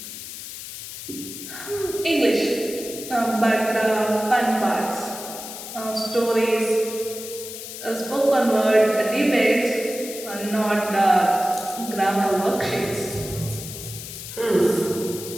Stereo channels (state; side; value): noise; left; hiss, 10 dB below the sound